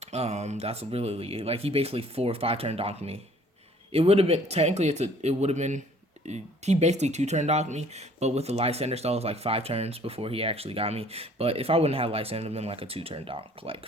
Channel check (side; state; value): both; normal; correlation 0.56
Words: That's really like he basically 4 or 5 turn donked me, It would have been technically it would have been he basically two turn docked me, but with the Lysander stall it was like 5 turns before he actually got me. But if I wouldn't have Lysander, it would have been like a 2 turn dock. Like